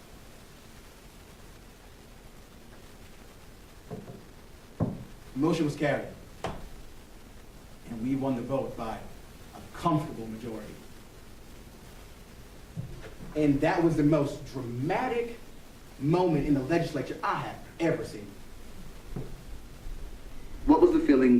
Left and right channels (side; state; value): both; identical; correlation 1.00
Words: The motion was carried. And we won the vote by a comfortable majority. And that was the most dramatic moment in the legislature I have ever seen. What was the